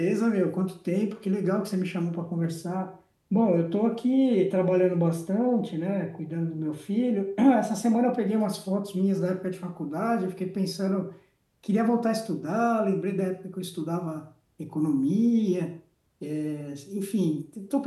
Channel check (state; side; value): identical; both; correlation 1.00